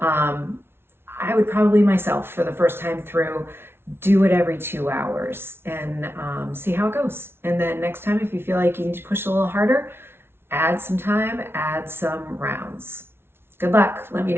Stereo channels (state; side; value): late; left; 0.12 ms